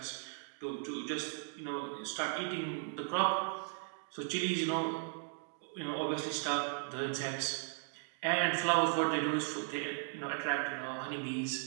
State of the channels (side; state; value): left; silent; 53 dB below the other